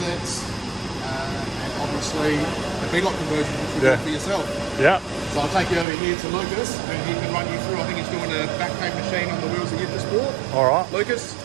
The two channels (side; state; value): left; drops out; at 5.9 s